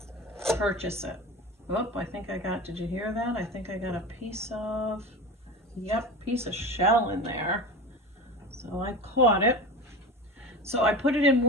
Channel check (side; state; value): both; normal; correlation 0.30